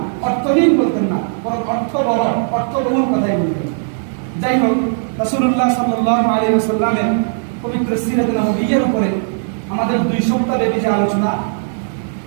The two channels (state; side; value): silent; left; digital silence